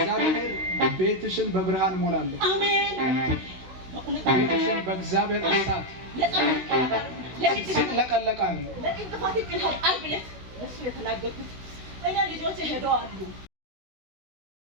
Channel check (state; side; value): late; left; 16 ms